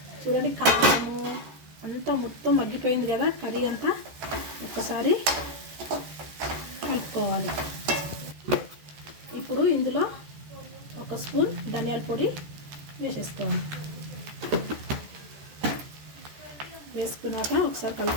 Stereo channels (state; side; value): late; left; 14 ms